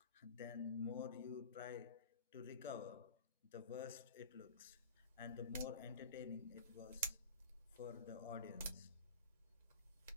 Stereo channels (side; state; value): both; inverted; correlation -0.36